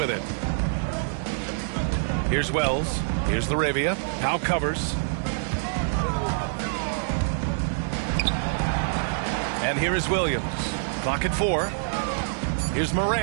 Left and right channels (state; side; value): silent; left; digital silence